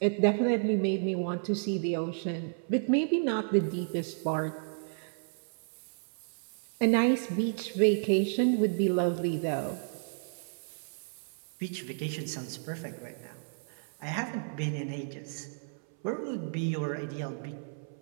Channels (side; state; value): left; silent; 56 dB below the other